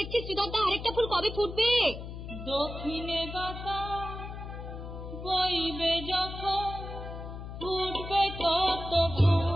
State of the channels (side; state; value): left; noise; hum, 9 dB below the sound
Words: শ্রীধর দা, আরেকটা ফুল কবে ফুটবে? দক্ষিণে বাতাস বইবে যখন ফুটবে কত